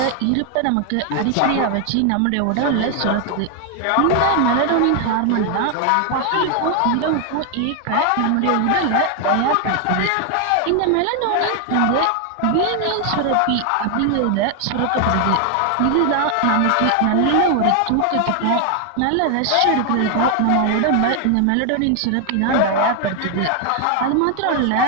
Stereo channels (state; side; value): different; both; correlation 0.00